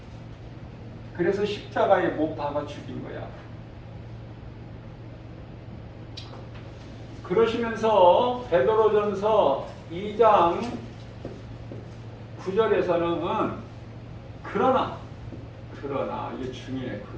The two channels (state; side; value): identical; both; correlation 1.00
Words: 그래서 십자가에 못 박아 죽인 거야. 그러시면서 베드로전서 2장 9절에서는 그러나 이게 중요해.